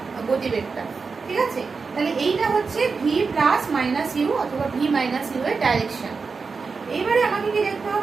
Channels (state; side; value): quieter; left; 4.8 dB